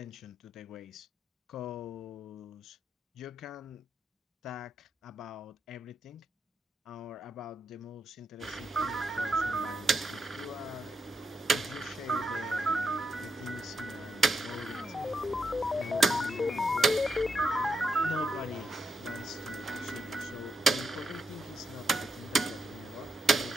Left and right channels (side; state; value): both; normal; correlation 0.81